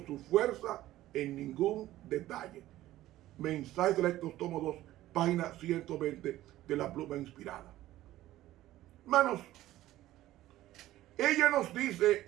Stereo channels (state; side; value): quieter; left; 15.0 dB